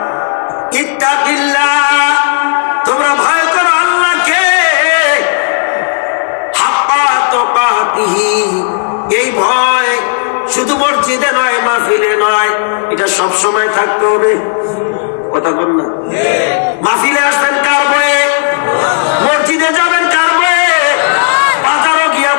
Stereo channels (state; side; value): silent; right; digital silence